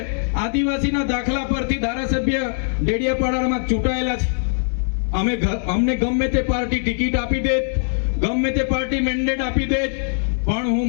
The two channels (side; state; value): right; silent; 65 dB below the other